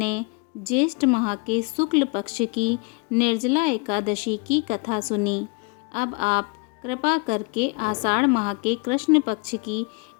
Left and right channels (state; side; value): quieter; right; 30.8 dB